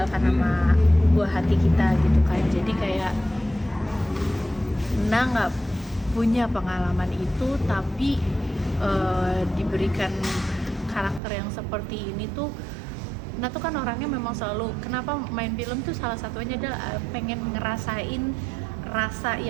sama buah hati kita gitu kan. Jadi kayak Nah nggak punya pengalaman itu, tapi diberikan karakter yang seperti ini tuh, Nah tuh kan orangnya memang selalu, kenapa main film tuh salah satunya adalah pengen ngerasain rasa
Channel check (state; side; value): drops out; left; at 11.2 s